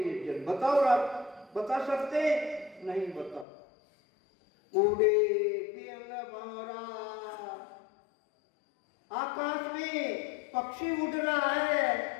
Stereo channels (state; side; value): drops out; right; at 3.5 s